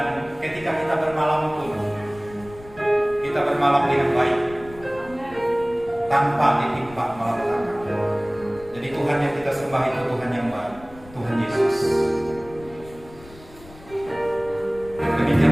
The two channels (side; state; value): left; noise; rumble, 20 dB below the sound